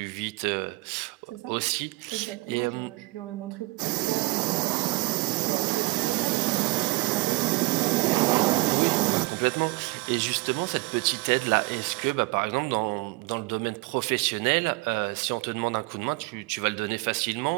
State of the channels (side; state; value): left; quieter; 23.2 dB